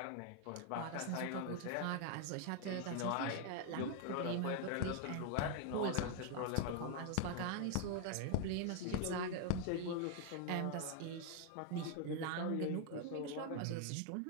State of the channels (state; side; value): different; both; correlation 0.00